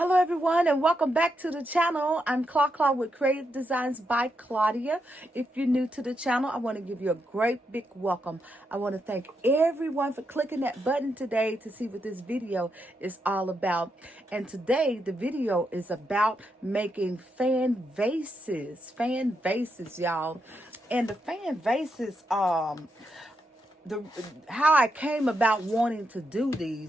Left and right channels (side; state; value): both; normal; correlation 0.82